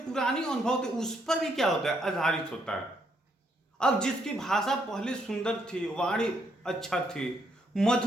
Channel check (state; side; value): normal; both; correlation 0.74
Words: अनुभव थे उस पर भी क्या होता है, आधारित होता है। अब जिसकी भाषा पहले सुंदर थी, वाणी अच्छा थी,